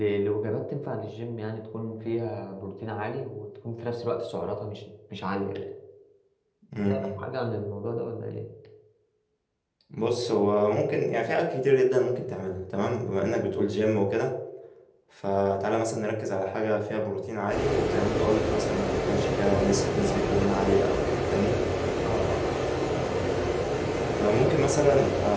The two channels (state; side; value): identical; both; correlation 1.00